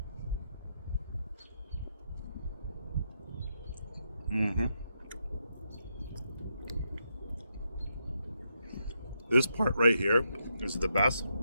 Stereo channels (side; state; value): both; inverted; correlation -0.81